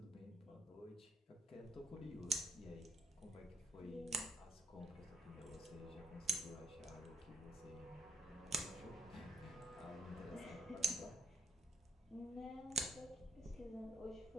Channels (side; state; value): both; normal; correlation 0.74